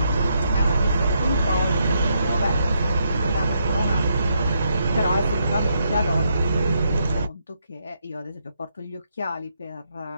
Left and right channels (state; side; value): inverted; both; correlation -0.78